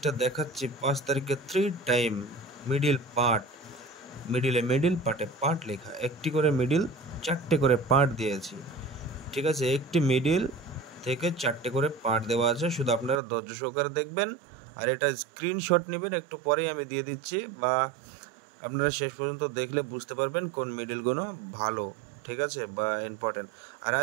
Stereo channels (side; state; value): left; drops out; at 13.2 s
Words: দেখাচ্ছি 5 তারিখে 3 টাইম মিডিল পার্ট, মিডিল পার্টে পার্ট লেখা, একটি করে মিডিল, 4টে করে পার্ট দিয়েছি। ঠিক আছে, একটি মিডিল থেকে 4টে করে পার্ট দেওয়া আছে, শুধু আপনারা ধৈর্য সহকারে দেখবেন আর এটা স্ক্রিনশট নেবেন, একটু পরেই আমি দিয়ে দিচ্ছি, বা আপনারা শেষ পর্যন্ত দেখলে বুঝতে পারবেন কোন মিডিলগুলো ভালো। ঠিক আছে, বা ইম্পর্টেন্ট। আর